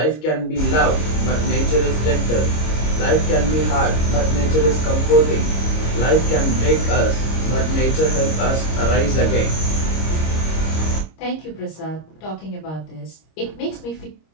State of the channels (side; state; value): right; late; 26 ms